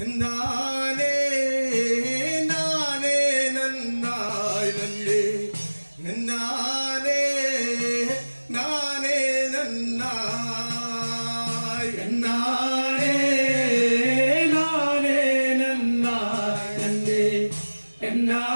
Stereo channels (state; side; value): inverted; both; correlation -1.00